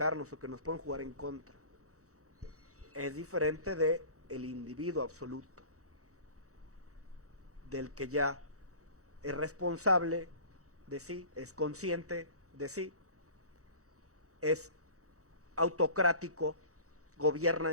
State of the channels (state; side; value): late; left; 0.65 ms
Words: o que nos pueden jugar en contra. Es diferente de el individuo absoluto, del que ya es responsable de sí, es consciente de sí, es autocrático, gobierna